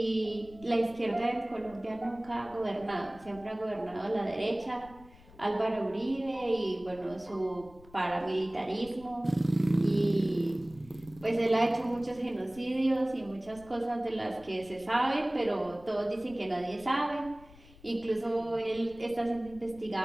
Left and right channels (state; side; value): noise; left; rumble, 22 dB below the sound